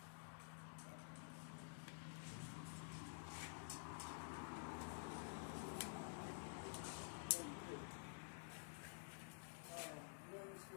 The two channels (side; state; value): right; silent; digital silence